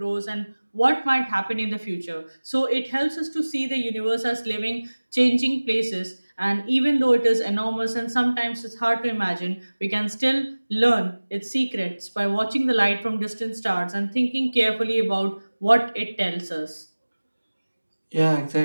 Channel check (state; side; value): inverted; both; correlation -1.00